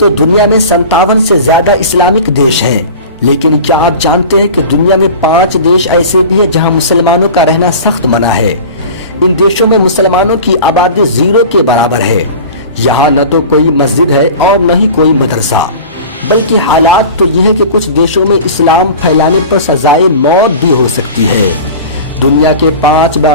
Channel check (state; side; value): inverted; both; correlation -0.37